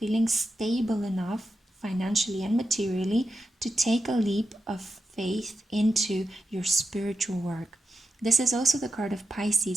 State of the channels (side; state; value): both; normal; correlation 0.88